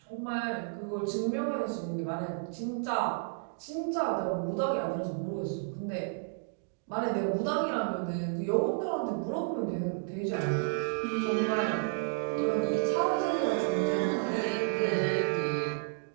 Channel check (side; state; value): left; silent; digital silence